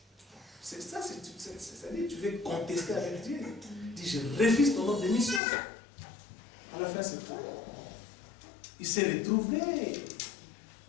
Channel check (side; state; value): right; drops out; at 5.4 s